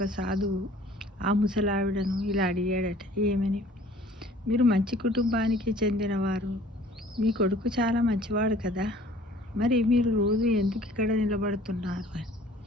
సాధువు ఆ ముసలావిడను ఇలా అడిగాడట, ఏమని? మీరు మంచి కుటుంబానికి చెందినవారు, మీ కొడుకు చాలా మంచివాడు కదా, మరి మీరు రోజు ఎందుకు ఇక్కడ నిలబడుతున్నారు అని.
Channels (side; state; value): both; normal; correlation 0.52